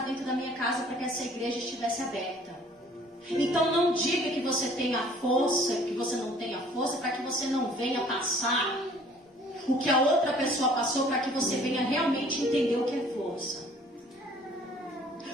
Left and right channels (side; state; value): both; normal; correlation 0.54